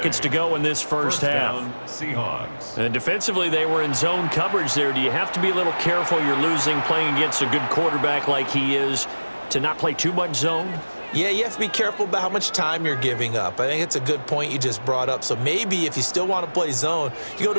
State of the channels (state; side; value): inverted; both; correlation -1.00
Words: to go in this first half. Seahawks. And defensively, they were in zone coverage there. Do you have to be a little careful? You're losing, playing against a good quarterback like he is, to not play too much zone? Yeah, you have to be careful about how much time you're giving up. I think it's a good point you just brought up. So maybe if you still want to play zone, you go